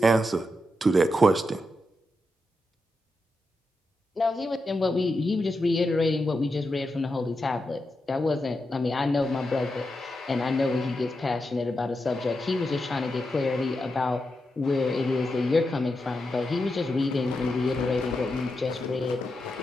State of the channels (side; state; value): both; normal; correlation 0.87